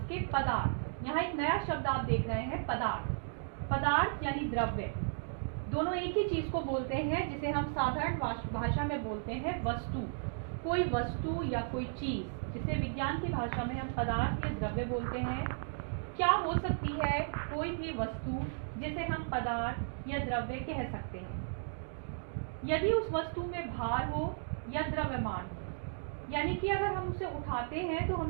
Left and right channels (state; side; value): silent; left; digital silence